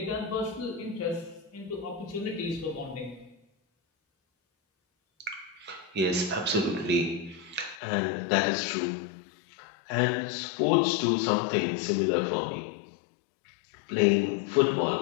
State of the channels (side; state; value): right; drops out; at 7.8 s